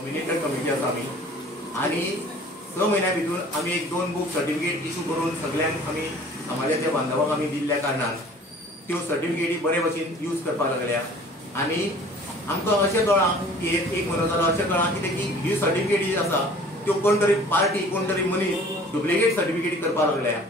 कमिटी आसा आमी, आणि 6 महिन्या भितर आमी एक 2 बुक सर्टिफिकेट इशू करून सगळ्यांक आमी समाजाच्या बांधवांक आमी दिल्ल्या कारणान त्यो सर्टिफिकेटी बरे भशेन यूज करपाक लागल्या। आणि आमकां अशें कळ्ळां की एक म्हयनो जालो अशें कळ्ळां कितें की ही सर्टिफिकेट जी आसा त्यो कोण तरी पार्टी कोण तरी मनीस डुप्लिकेट सर्टिफिकेट करपाक लागल्या,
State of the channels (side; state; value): both; normal; correlation 0.49